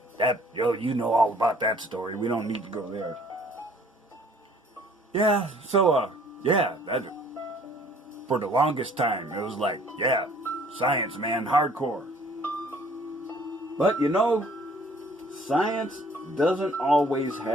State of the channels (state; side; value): normal; both; correlation 0.57